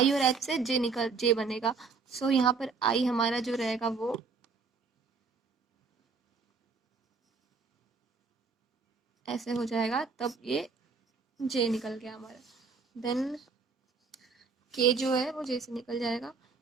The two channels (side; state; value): left; quieter; 4.8 dB